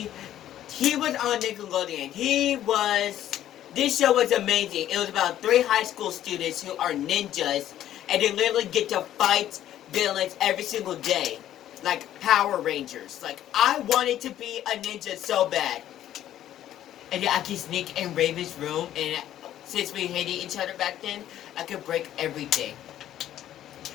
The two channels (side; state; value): right; quieter; 12.0 dB